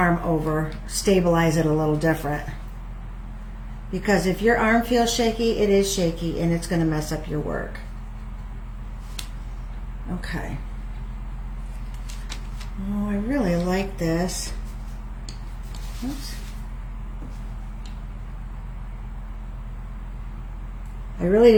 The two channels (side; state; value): both; identical; correlation 1.00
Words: over, stabilize it a little different. Because if your arm feels shaky, it is shaky and it's going to mess up your work. Okay. Oh, I really like this. Oops. I really